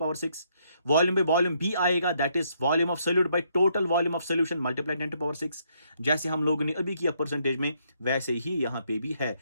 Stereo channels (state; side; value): inverted; both; correlation -0.72